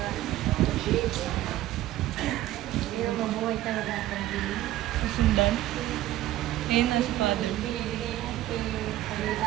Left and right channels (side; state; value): left; quieter; 14.7 dB